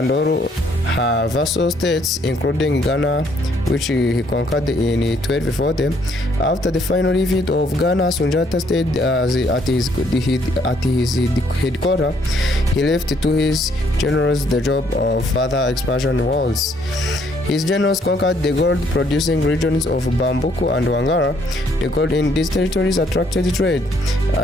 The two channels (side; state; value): both; normal; correlation 0.67